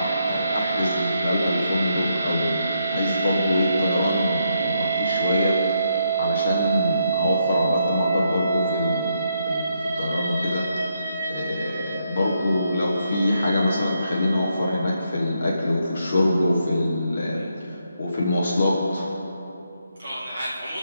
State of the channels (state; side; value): inverted; both; correlation -0.78